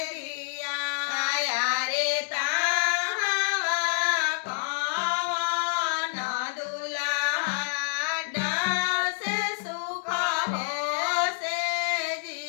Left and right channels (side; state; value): right; silent; digital silence